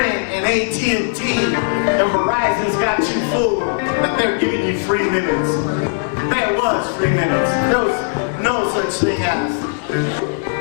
and AT&T and Verizon's got you fooled that they're giving you free minutes. There was free minutes. There was no such thing as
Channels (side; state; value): right; silent; digital silence